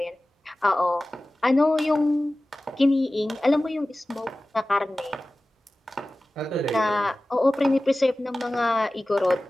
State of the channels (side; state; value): both; normal; correlation 0.97